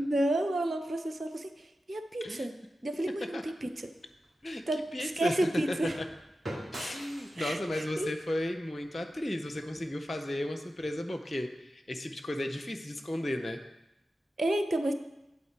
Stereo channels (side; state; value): both; normal; correlation 0.92